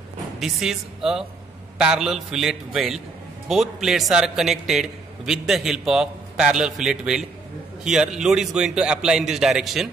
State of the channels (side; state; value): left; quieter; 3.9 dB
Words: this is a parallel fillet weld. Both plates are connected with the help of parallel fillet weld. Here load is going to apply in this